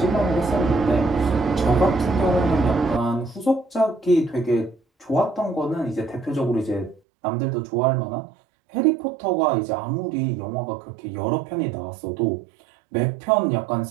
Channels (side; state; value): left; drops out; at 7.0 s